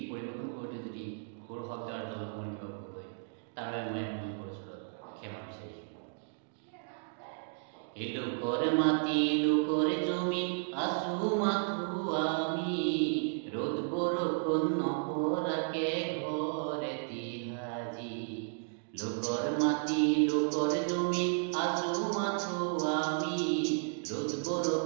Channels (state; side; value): silent; left; digital silence